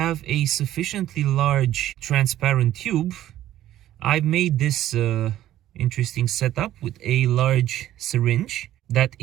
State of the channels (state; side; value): quieter; left; 13.2 dB